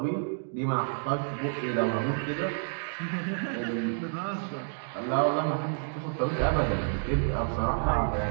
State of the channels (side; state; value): left; silent; digital silence